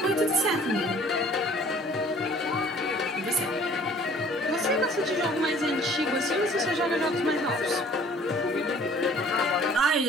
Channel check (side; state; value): both; normal; correlation 0.53